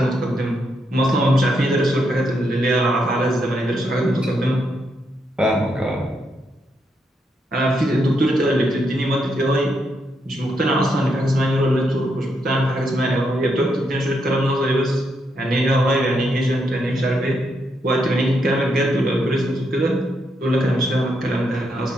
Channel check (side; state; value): both; normal; correlation 0.79